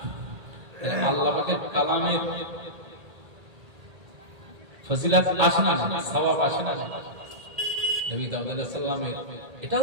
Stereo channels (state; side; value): late; left; 1.8 ms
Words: আল্লাহ পাকের কালামের ফজিলত আসে না, সওয়াব আসে না। নবী দাউদ আলাইহিস সালামের